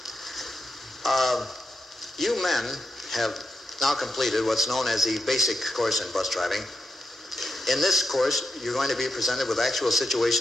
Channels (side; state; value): both; normal; correlation 0.86